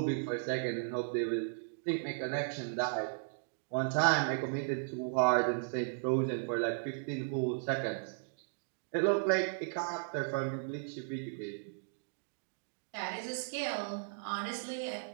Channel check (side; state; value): left; silent; digital silence